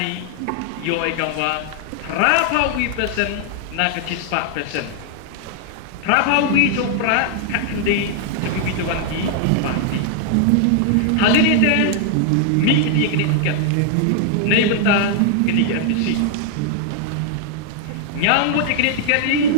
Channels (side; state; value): both; different; correlation 0.00